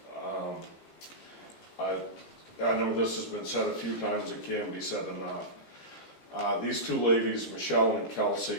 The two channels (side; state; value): right; late; 17 ms